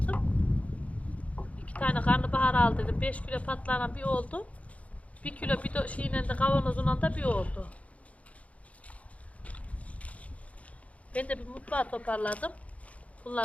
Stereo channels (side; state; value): right; late; 0.066 ms